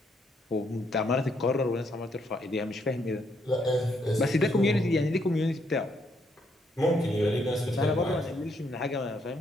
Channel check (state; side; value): normal; both; correlation 0.73